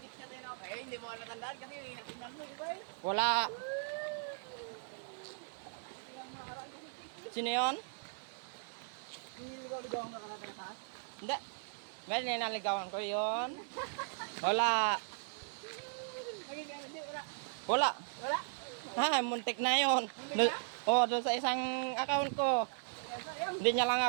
ka tayo na ako. Eh, hindi mo ka natandaan kasi yung inatingnan mo. Di ba eh? Wala. Yung nakaraan kasi Sino yun? Niligaw ang nakalata na taas. Hindi. May ninaligawan ko yun. Wala. Naging ano, hindi, wala. Wala. Wala. Ha, muntik na yun. Muntik na? Doon sa isang account ko. Kaya sayang. Hindi niya lang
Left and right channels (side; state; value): left; silent; digital silence